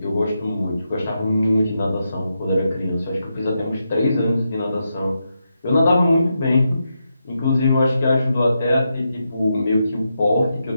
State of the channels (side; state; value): both; inverted; correlation -0.85